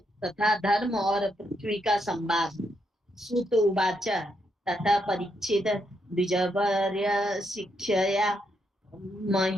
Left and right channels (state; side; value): normal; both; correlation 0.79